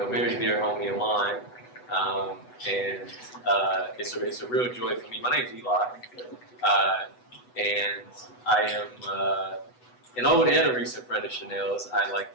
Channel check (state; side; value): late; right; 8.0 ms